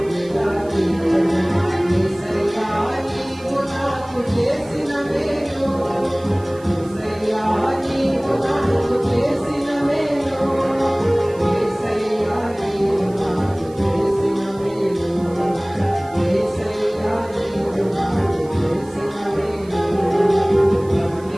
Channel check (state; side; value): noise; right; hiss, 25 dB below the sound